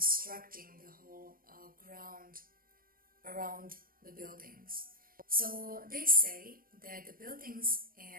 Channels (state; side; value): late; left; 0.41 ms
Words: the whole ground around the buildings. So they say that the buildings